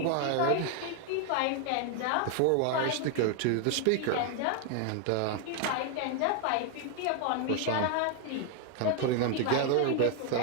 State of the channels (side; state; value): both; different; correlation 0.01